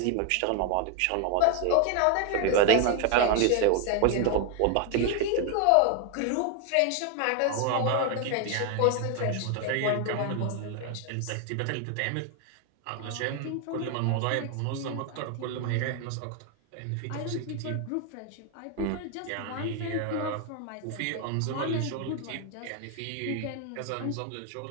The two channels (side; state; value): both; different; correlation 0.01